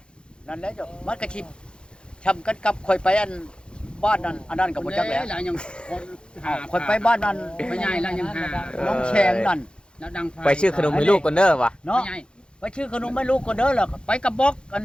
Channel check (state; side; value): late; right; 0.053 ms